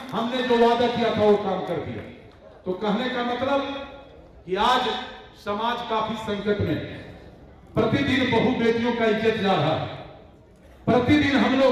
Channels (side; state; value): both; identical; correlation 1.00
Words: हमने जो वादा किया था वो काम कर दिया। तो कहने का मतलब कि आज समाज काफी संकट में है। प्रतिदिन बहु बेटियों का इज्जत जा रहा है। प्रतिदिन हम